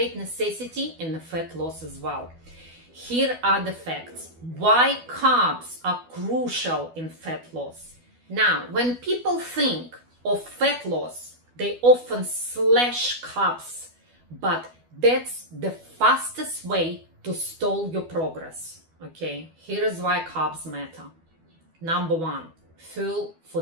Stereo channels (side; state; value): left; late; 12 ms